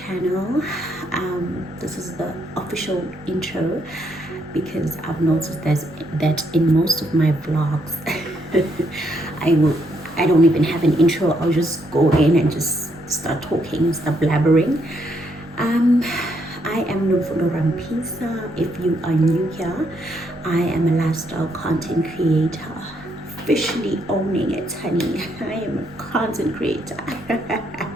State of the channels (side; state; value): both; normal; correlation 0.74